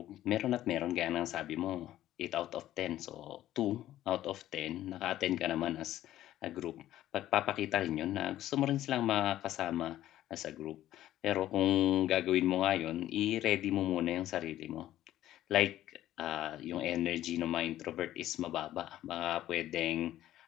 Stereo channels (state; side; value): quieter; right; 13.4 dB